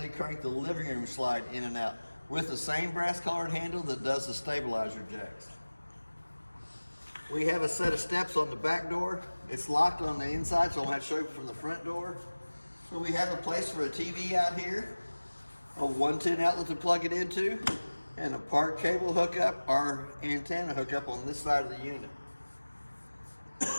crank the living room slide in and out with the same brass colored handle that does the stabilizer jacks. We have a set of steps on the back door. It's locked on the inside, so I'll have to show you from the front door. So we have a place for a TV out here, a 110 outlet to plug it into, and a part cable hookup or antenna hookup on this side of the unit.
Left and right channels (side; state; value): both; inverted; correlation -1.00